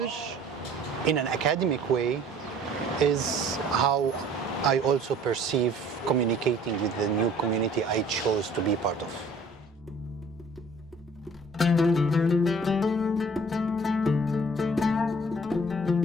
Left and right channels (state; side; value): normal; both; correlation 0.54